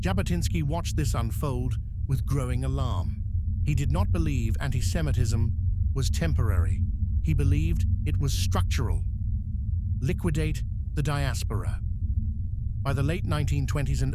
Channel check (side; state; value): both; identical; correlation 1.00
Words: watched this unfold with growing alarm. He did not believe anti-Semitism was temporary. He believed it was structural. Liquidate the diaspora. By the late 1920s and